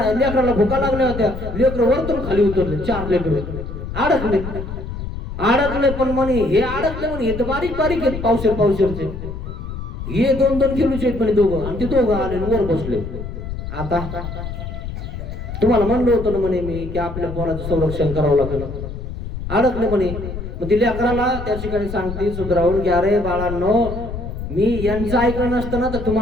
लेकराला भुका लागल्या होत्या. लेकर वरतून खाली उतरले. 4 लेकर अडकले. पण म्हणे हे अडकले म्हणे. हे तर बारीक आहेत पावशेरचे. हे 2-2 किलोचे आहेत म्हणे दोघं. आणि ते दोघं आले वर बसले. आता तुम्हाला म्हणलं होतं ना म्हणे मी की आपल्या पोराचं संरक्षण करावं लागेल. अडकले म्हणे. मग ती लेकराला त्या ठिकाणी सांगते सुधरावून की अरे बाळांनो मी यांचं ऐकलं नसतं ना तर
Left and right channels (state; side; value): noise; left; rumble, 7 dB below the sound